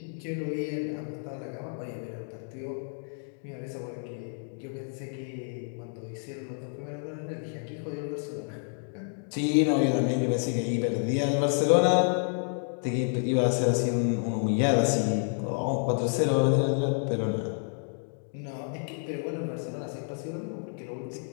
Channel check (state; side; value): silent; right; 58 dB below the other